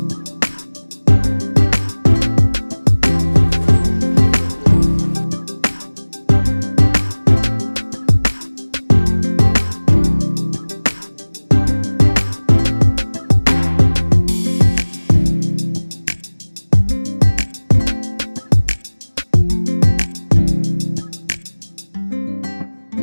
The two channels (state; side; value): inverted; both; correlation -1.00